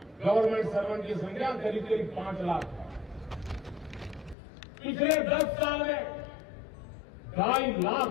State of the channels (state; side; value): drops out; right; at 4.4 s